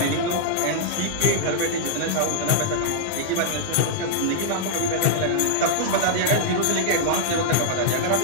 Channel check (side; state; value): both; different; correlation -0.02